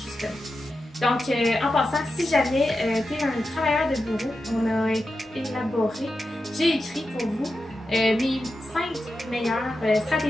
justement. Donc, en passant, si jamais tu es un travailleur de bureau, on a élaboré, j'ai écrit pour vous mes 5 meilleures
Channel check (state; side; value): normal; both; correlation 0.90